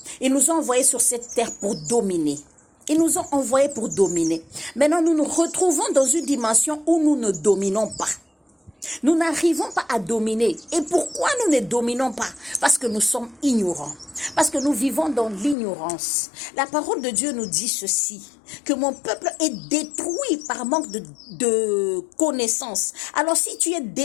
il nous a envoyés sur cette terre pour dominer. Ils nous ont envoyés pour dominer. Maintenant, nous nous retrouvons dans une dimension où nous ne dominons pas. Nous n'arrivons pas à dominer. Et pourquoi nous ne dominons pas? Parce que nous sommes ignorants. Parce que nous vivons dans l'ignorance. La parole de Dieu nous dit ceci, que mon peuple est détruit par manque de connaissances. Alors si tu es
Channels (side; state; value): right; drops out; at 15.6 s